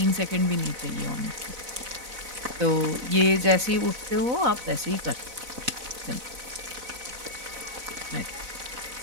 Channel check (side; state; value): left; late; 4.0 ms